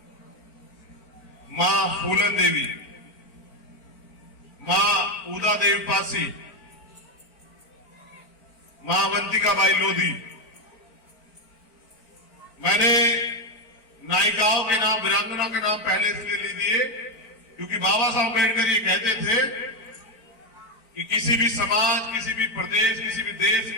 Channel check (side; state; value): right; late; 4.4 ms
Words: मां फूलन देवी, मां उदा देवी पासी, मां अवंतिकाबाई लोधी। मैंने नायिकाओं के नाम, वीरांगना के नाम पहले इसलिए ले दिए क्योंकि बाबा साहब अम्बेडकर ये कहते थे कि किसी भी समाज, किसी भी प्रदेश, किसी भी देश